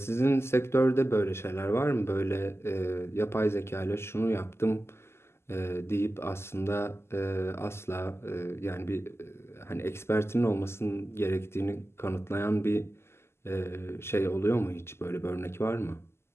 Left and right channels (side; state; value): right; late; 0.12 ms